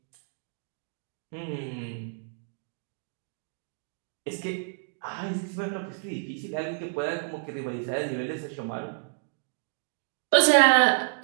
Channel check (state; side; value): silent; left; digital silence